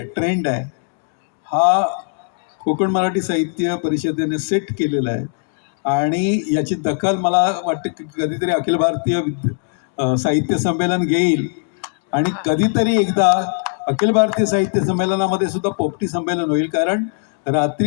आहे. हा कोकण मराठी साहित्य परिषदेने सेट केलेला आहे आणि याची दखल मला वाटतं की कधीतरी अखिल भारतीय साहित्य संमेलन घेईल आणि कधीतरी एकदा अखिल भारतीय साहित्य संमेलनामध्ये सुद्धा पोपटी संमेलन होईल. कारण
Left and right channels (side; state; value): right; silent; 57 dB below the other